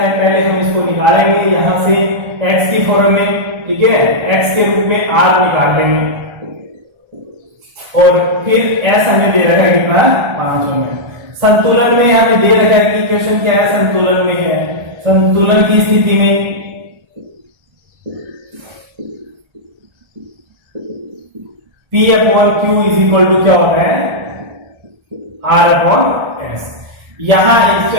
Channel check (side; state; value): left; late; 1.3 ms